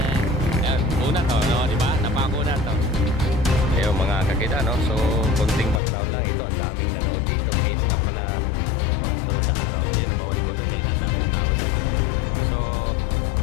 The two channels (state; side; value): drops out; right; at 5.8 s